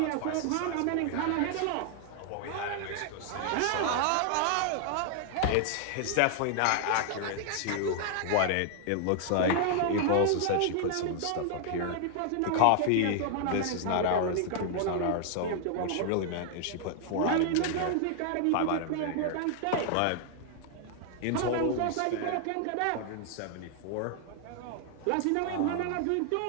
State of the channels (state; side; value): different; both; correlation 0.00